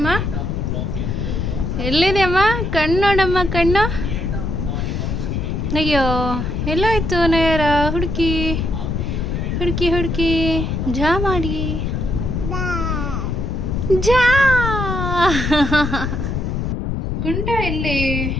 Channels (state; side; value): noise; left; rumble, 1 dB below the sound